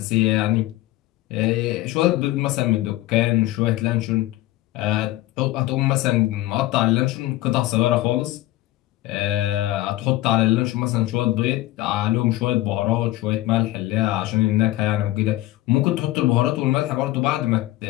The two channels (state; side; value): quieter; right; 16.7 dB